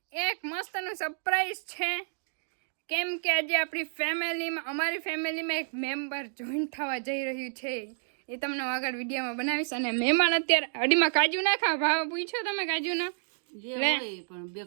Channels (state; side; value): silent; left; digital silence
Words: એક મસ્તનું સરપ્રાઈઝ છે, કેમ કે આજે અમારી ફેમિલીમાં એક મેમ્બર જોઈન થવા જઈ રહ્યું છે. એ તમને આગળ વિડીયોમાં બનાવીશ. અને મહેમાન અત્યારે અડીમાં કાજુ નાખા ભાવ પૂછો તમે કાજુનો લે પણ